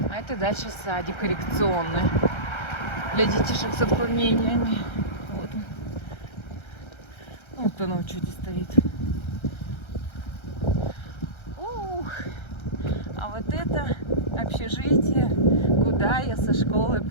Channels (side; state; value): right; late; 1.3 ms